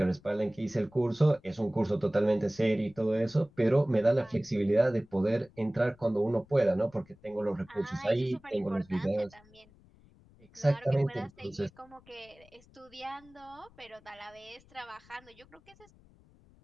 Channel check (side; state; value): left; noise; rumble, 27 dB below the sound